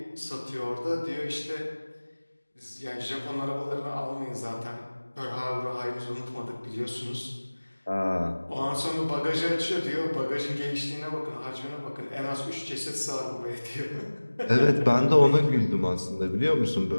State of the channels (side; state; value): both; inverted; correlation -1.00